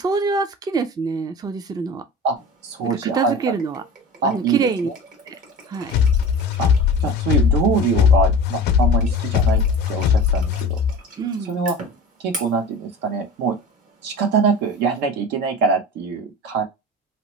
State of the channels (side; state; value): both; normal; correlation 0.35